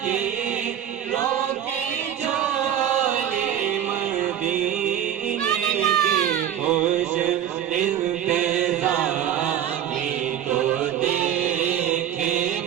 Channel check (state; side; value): quieter; left; 10.1 dB